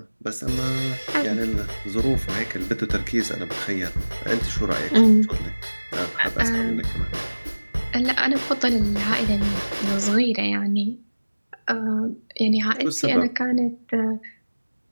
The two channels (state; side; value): inverted; both; correlation -1.00